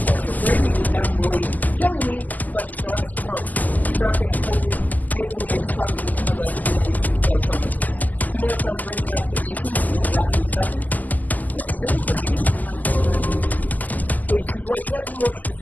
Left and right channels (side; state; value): right; late; 0.081 ms